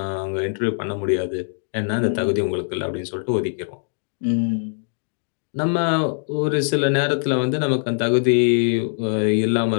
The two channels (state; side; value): silent; right; digital silence